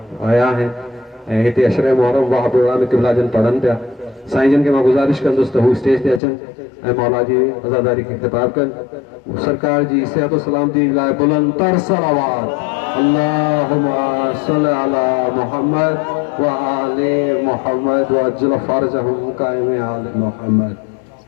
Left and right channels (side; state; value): right; drops out; at 6.2 s